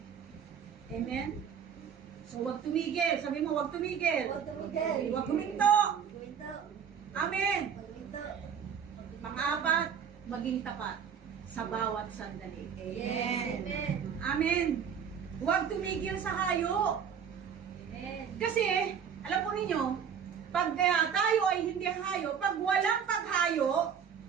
Amen? So, huwag tumigil. Sabi mo, huwag tumigil. Huwag tumigil. Huwag huminto. Huminto. Amen. Huminto. Pang-apat, maging tapat sa bawat sandali. Yes. Amen. Amen. Huwag tumigil sa hayo. Amen. Kasi, alam po ninyo, pag tayo ay hindi hayo, pag walang paghayo,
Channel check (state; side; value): quieter; left; 7.6 dB